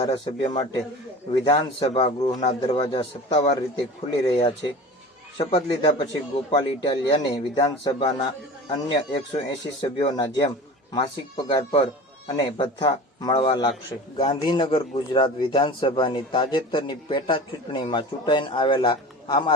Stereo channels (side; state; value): both; normal; correlation 0.36